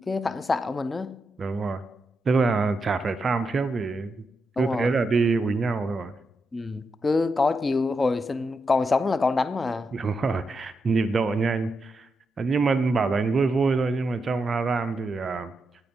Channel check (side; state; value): both; normal; correlation 0.85